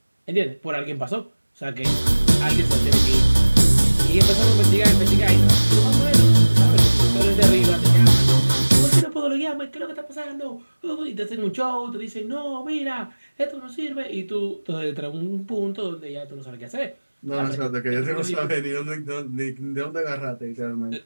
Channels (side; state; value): both; inverted; correlation -1.00